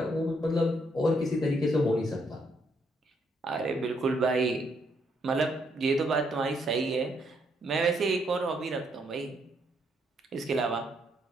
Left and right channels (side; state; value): both; normal; correlation 0.74